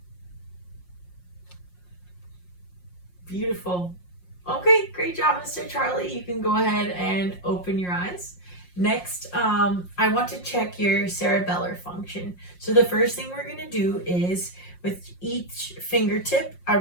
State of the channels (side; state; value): right; late; 5.6 ms